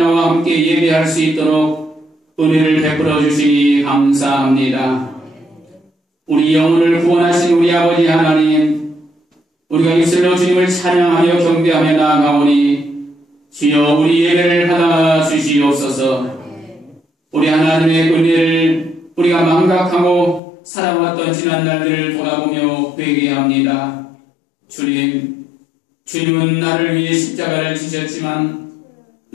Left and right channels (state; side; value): drops out; right; at 20.4 s